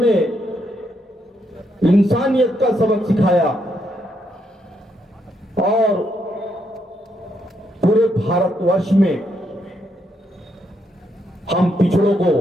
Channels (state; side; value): normal; both; correlation 0.77